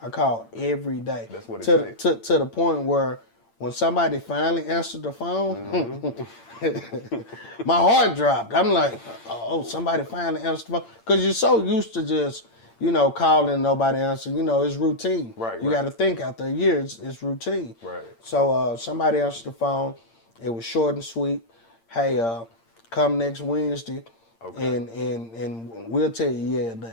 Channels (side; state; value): right; late; 8.8 ms